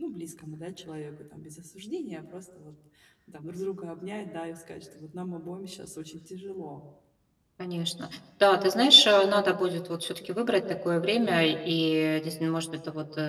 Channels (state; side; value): identical; both; correlation 1.00